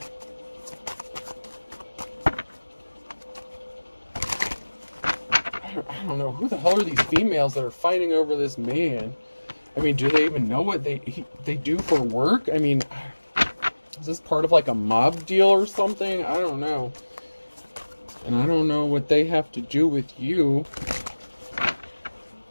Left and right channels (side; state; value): both; inverted; correlation -1.00